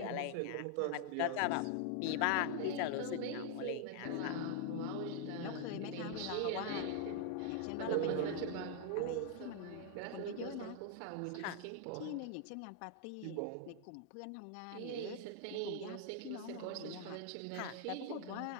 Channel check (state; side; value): different; both; correlation 0.00